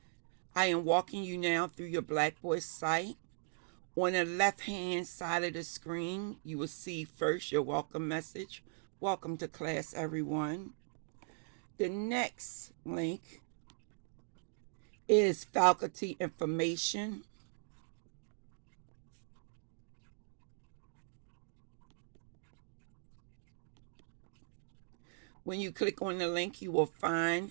I am walking you now through your Blackboard site. On the left-hand side of the screen, you will see first your welcome message. Welcome to class, everyone. The next link is faculty information. When you click on the link, you will find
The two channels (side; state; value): left; silent; digital silence